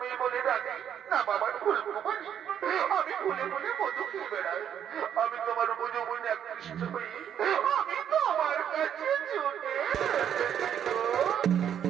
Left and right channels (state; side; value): quieter; left; 9.2 dB